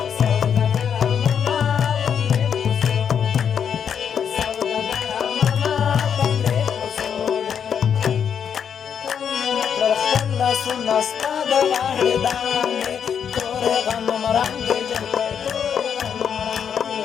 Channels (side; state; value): right; quieter; 7.8 dB